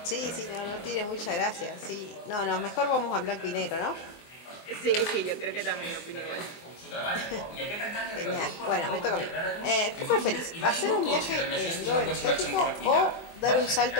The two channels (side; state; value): right; late; 24 ms